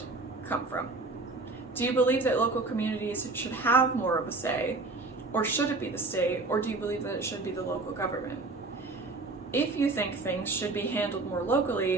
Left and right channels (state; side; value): quieter; left; 3.4 dB